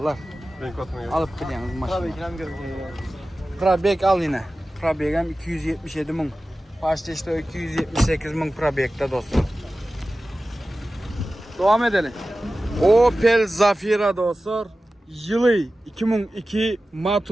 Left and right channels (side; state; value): both; normal; correlation 0.95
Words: Alıp biliyorsunuz maşını. Probek al yine. Probek'em 277 bin. Başta işte 278 bin Probek'te dostlar. Devam edelim. Opel Zafira dostlar. Yılı 2002